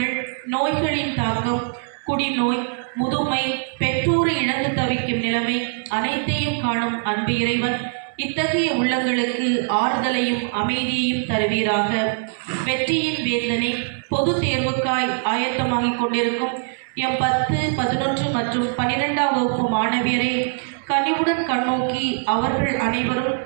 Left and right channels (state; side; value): silent; left; 64 dB below the other